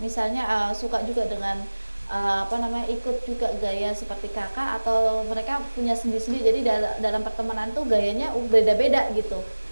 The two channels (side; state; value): both; inverted; correlation -1.00